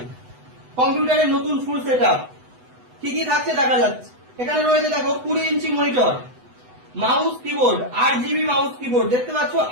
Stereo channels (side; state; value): left; late; 8.0 ms